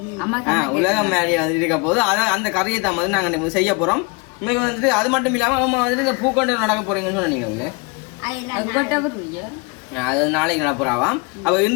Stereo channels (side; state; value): right; quieter; 29.0 dB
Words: உலகம் மேரியா வந்துட்டு இருக்க போது அதான் அந்த கறியை தான் வந்து நாங்க செய்ய போறோம். இன்னைக்கு வந்துட்டு அது மட்டும் இல்லாம அம்மா வந்துட்டு இந்த பூக்கொண்டு நடக்க போறீங்கன்னு சொன்னீங்க. அது நாளைக்கு நடப்புறாவாம். அப்ப